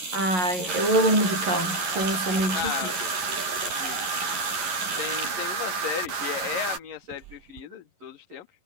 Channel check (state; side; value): late; left; 11 ms